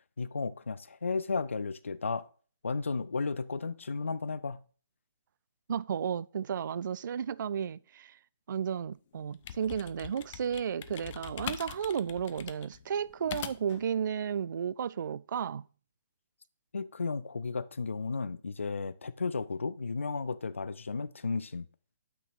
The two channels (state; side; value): inverted; both; correlation -0.72